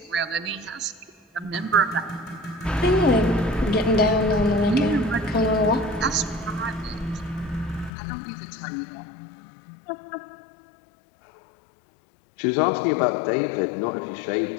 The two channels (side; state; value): right; drops out; at 7.9 s